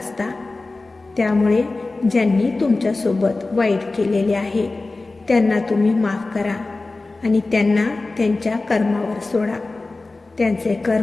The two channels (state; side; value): quieter; right; 3.3 dB